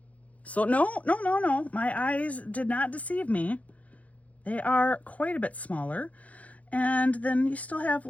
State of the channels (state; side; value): late; right; 0.068 ms